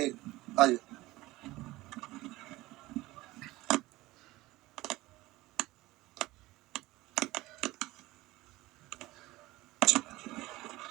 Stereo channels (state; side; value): quieter; left; 19.0 dB